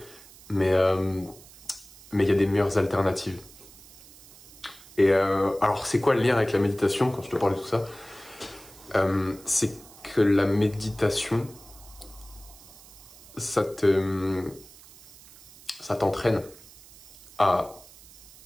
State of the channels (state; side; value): noise; right; hiss, 21 dB below the sound